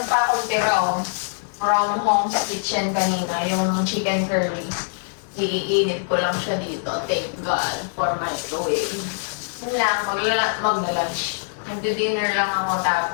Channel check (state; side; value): silent; right; digital silence